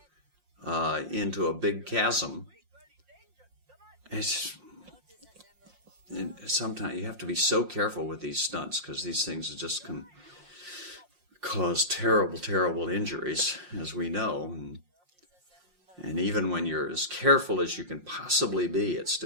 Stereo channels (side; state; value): left; late; 5.6 ms